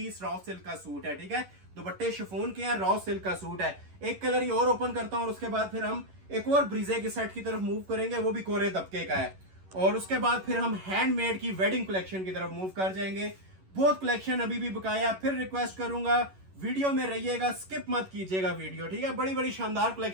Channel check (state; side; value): late; left; 11 ms